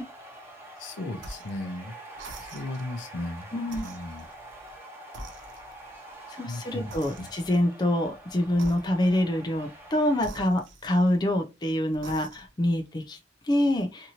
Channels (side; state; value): both; normal; correlation 0.81